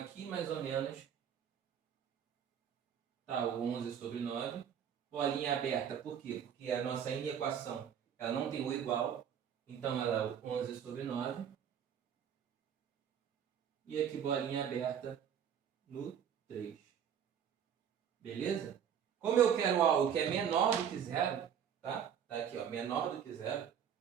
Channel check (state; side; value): quieter; left; 8.5 dB